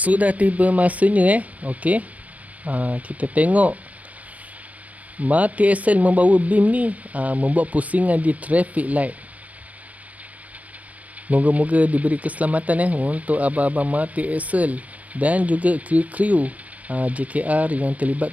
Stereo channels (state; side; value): late; left; 0.069 ms